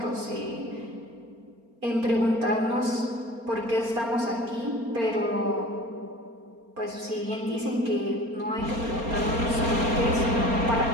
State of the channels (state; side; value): late; left; 4.3 ms